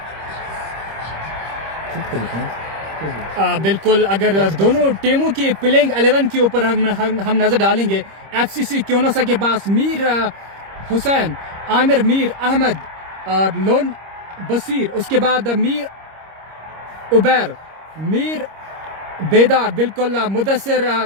बिल्कुल अगर दोनों टीमों की प्लेइंग 11 के ऊपर हम नजर डालेंगे, एफसीसी क्योनोसा के पास मीर हुसैन, आमिर मीर अहमद और लोन बसीर, उसके बाद मीर उबैर, मीर बेदार, बिल्कुल मुदस्सिर,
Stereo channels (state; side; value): late; left; 26 ms